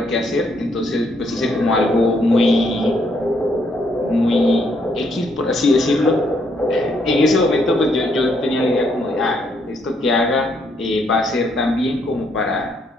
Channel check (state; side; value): normal; both; correlation 0.72